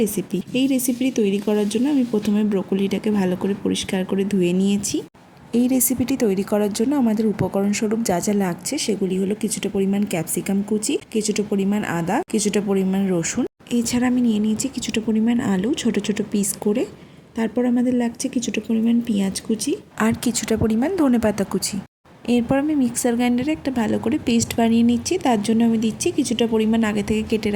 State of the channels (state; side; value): identical; both; correlation 1.00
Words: এই রেসিপিটি তৈরি করার জন্য আমি প্রথমে ব্রোকলিটাকে ভালো করে পরিষ্কার করে ধুয়ে নিয়েছি। এই রেসিপিটি তৈরি করার জন্য আমাদের উপকরণ স্বরূপ যা যা লাগছে সেগুলি হলো কিছুটা পরিমাণ ক্যাপসিকাম কুচি, কিছুটা পরিমাণ আদা, কিছুটা পরিমাণ রসুন। এছাড়া আমি নিয়ে নিয়েছি কিছুটা পরিমাণ আলু ছোট ছোট পিস করে। তারপর আমাদের লাগছে কিছুটা পরিমাণ পেঁয়াজ কুচি আর কিছুটা পরিমাণ ধনেপাতা কুচি। এরপর আমি মিক্সার গ্রাইন্ডারে একটা ভালো করে পেস্ট বানিয়ে নিচ্ছি। তার জন্য আমি দিচ্ছি কিছুটা পরিমাণ আগে থেকে কেটে